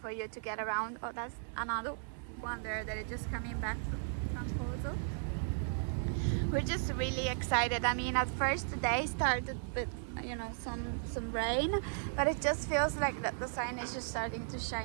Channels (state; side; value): silent; left; digital silence